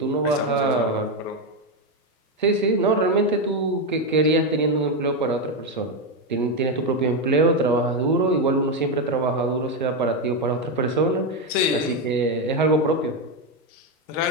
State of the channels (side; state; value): both; normal; correlation 0.08